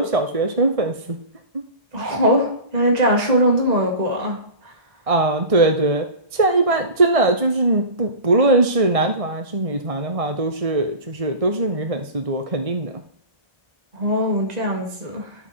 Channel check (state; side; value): late; left; 1.6 ms